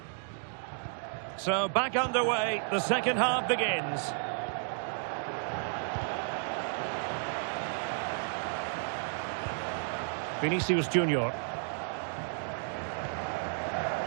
So back underway, the second half begins. Vinicius Junior.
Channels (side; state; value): left; silent; 56 dB below the other